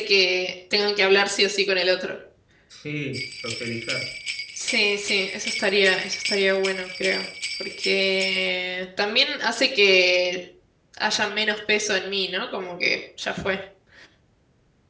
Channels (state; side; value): identical; both; correlation 1.00